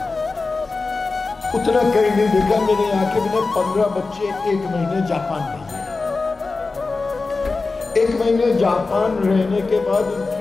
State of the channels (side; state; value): right; quieter; 3.9 dB